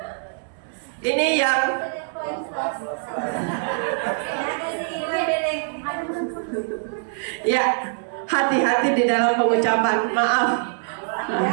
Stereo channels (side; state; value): left; silent; 63 dB below the other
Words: ini yang ya, hati-hati di dalam pengucapan, maaf.